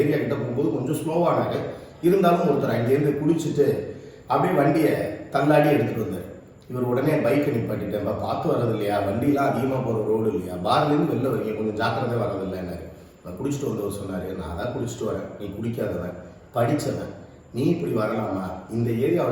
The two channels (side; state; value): both; identical; correlation 1.00